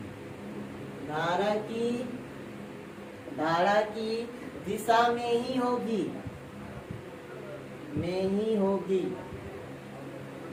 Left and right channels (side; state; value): both; identical; correlation 1.00